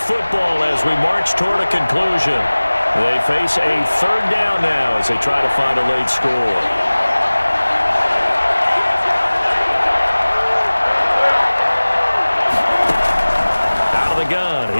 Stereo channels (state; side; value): inverted; both; correlation -1.00